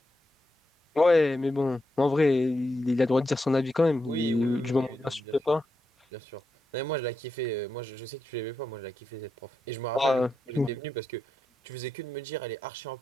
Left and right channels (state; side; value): normal; both; correlation 0.85